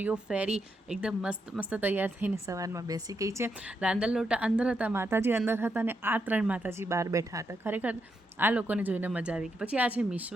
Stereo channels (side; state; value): both; normal; correlation 0.82